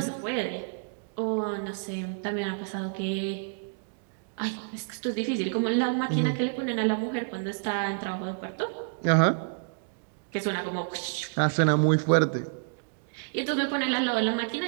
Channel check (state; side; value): silent; left; digital silence